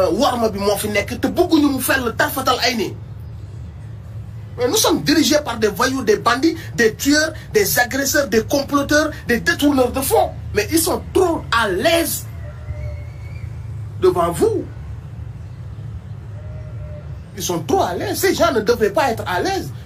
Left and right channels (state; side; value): identical; both; correlation 1.00